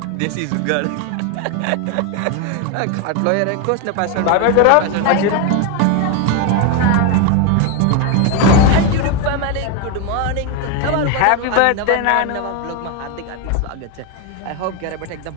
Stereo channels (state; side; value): different; both; correlation 0.02